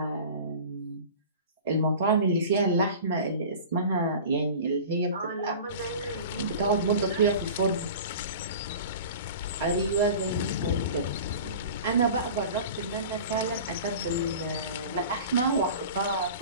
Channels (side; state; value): both; inverted; correlation -0.38